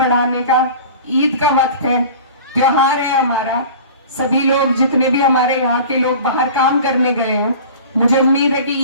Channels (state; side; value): inverted; both; correlation -0.40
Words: का, ईद का वक्त है, त्योहार है हमारा, सभी लोग जितने भी हमारे यहाँ के लोग बाहर काम करने गए हैं, मुझे उम्मीद है कि